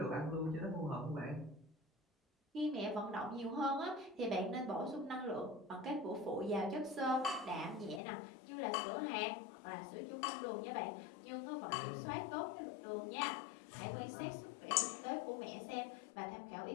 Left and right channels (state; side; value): drops out; right; at 8.0 s